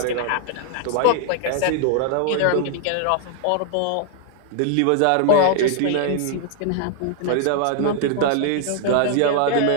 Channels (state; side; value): different; both; correlation 0.00